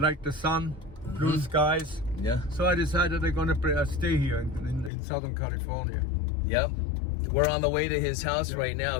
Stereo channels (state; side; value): drops out; right; at 4.9 s